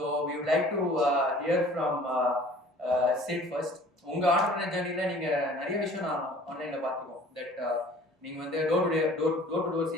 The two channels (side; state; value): both; normal; correlation 0.50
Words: we would like to hear from Sid first. உங்க ஆண்டர்பிரினர் ஜர்னில நீங்க நிறைய விஷயம் நான் ஆன்லைன்ல பார்த்துருக்கோம். தட் நீங்க வந்து டோர் டு டோர்